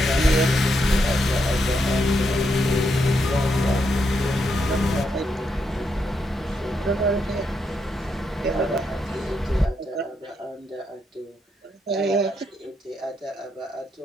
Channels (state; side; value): normal; both; correlation 0.80